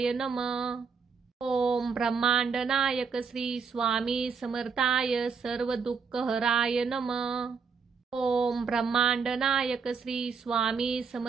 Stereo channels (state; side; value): quieter; left; 5.6 dB